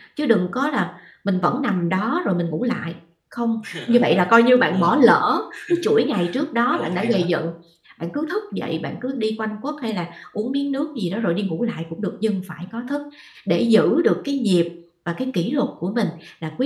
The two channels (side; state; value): both; identical; correlation 1.00